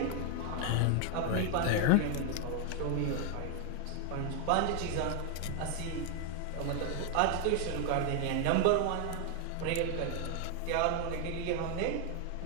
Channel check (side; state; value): both; different; correlation 0.01